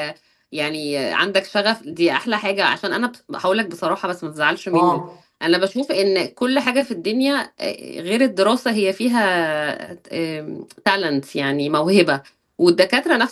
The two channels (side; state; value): both; identical; correlation 1.00